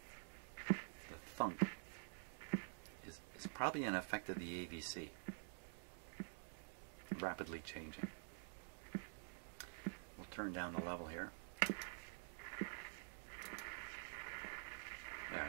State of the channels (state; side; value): silent; left; digital silence